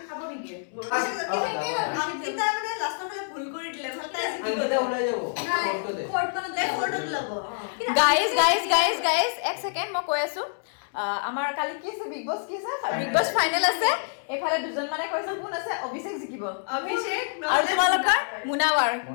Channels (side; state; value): right; silent; 60 dB below the other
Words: খাব নেকি অংকিতা মানে লাষ্টৰ ফালে ভুল কৰি দিলে ভাল তাই আঙ্গিতা ওলাই যাব ফটোতে ফটোত ল'ব গাইজ এক ছেকেণ্ড মই কৈ আছো আমাৰ কালি কি আছে বিগ বছ কি আছে বিগ বছ ফাইনেল আছে এফালে দুজন মানে কৈছে কোন আছে অভিষেক জিকিব অভিষেক আৰু তোমালোকৰ মুনাৱাৰ